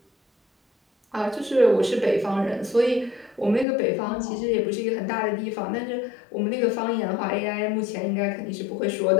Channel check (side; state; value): right; drops out; at 3.7 s